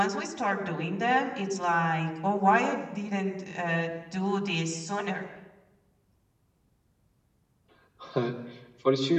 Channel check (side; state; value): both; identical; correlation 1.00